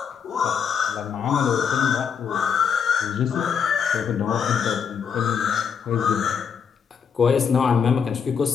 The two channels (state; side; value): quieter; right; 6.9 dB